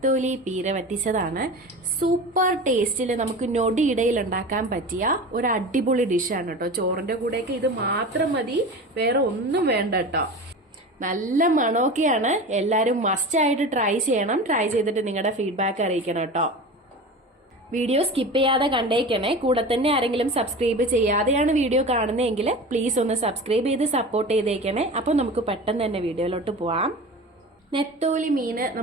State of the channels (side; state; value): both; normal; correlation 0.32